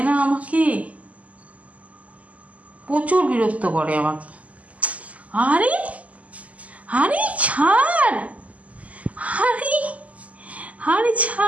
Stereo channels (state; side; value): late; left; 0.070 ms